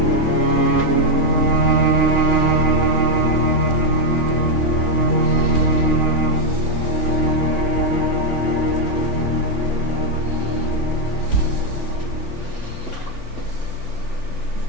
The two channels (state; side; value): late; left; 3.5 ms